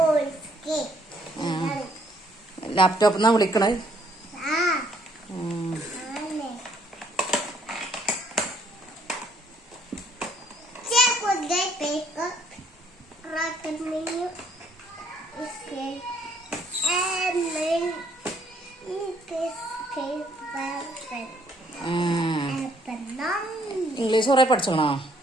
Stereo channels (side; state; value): both; normal; correlation 0.66